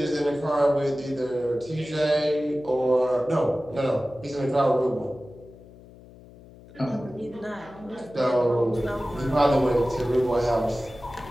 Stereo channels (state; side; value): noise; left; hum, 21 dB below the sound